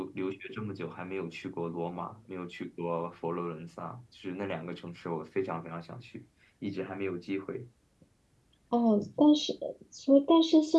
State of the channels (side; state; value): both; identical; correlation 1.00